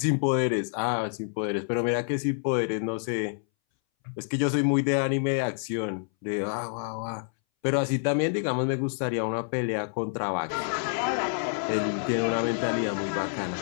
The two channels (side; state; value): right; silent; 60 dB below the other